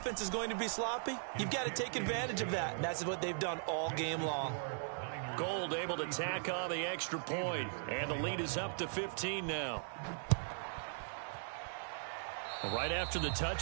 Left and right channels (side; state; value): left; silent; digital silence